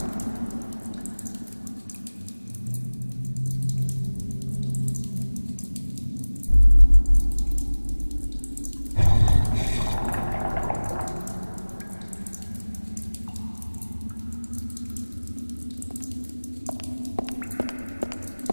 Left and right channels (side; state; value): both; inverted; correlation -1.00